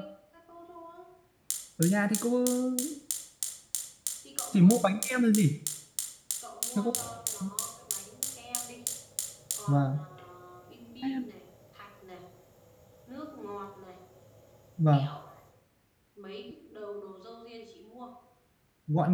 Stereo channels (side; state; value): both; identical; correlation 1.00